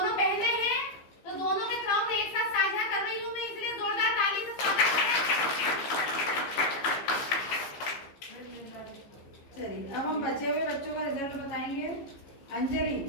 बहनें हैं तो दोनों के क्राउन एक साथ साझा कर रही हूँ मैं, इसलिए जोरदार ताली से स्वागत करें। चलिए अब हम बचे हुए बच्चों का रिजल्ट बताएंगे।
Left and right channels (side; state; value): right; late; 15 ms